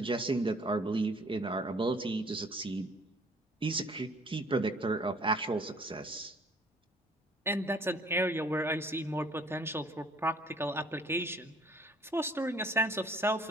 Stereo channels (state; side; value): normal; both; correlation 0.56